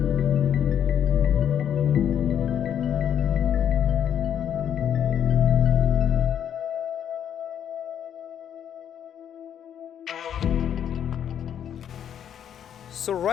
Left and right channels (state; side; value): quieter; right; 9.3 dB